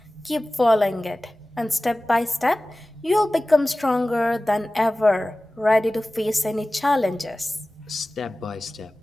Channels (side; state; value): both; normal; correlation 0.97